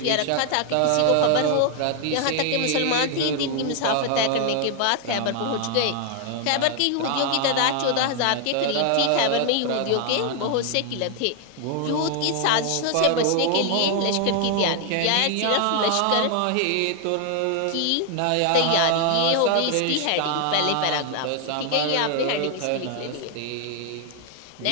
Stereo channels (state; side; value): different; both; correlation 0.00